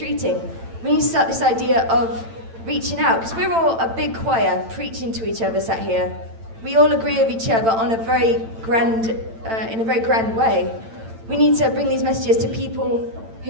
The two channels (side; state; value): left; late; 8.9 ms